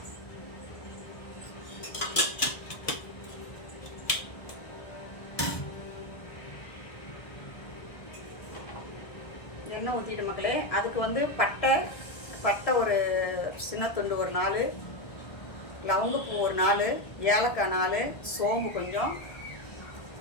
எண்ணெய் ஊற்றிட்டு மக்களே, அதுக்கு வந்து பட்டை ஒரு சின்ன துண்டு ஒரு 4, லவங்கப்பூ ஒரு 4, ஏலக்காய் 4, சோம்பு கொஞ்சம்,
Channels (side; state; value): right; late; 1.7 ms